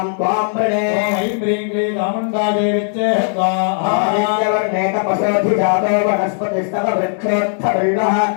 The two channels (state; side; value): silent; right; digital silence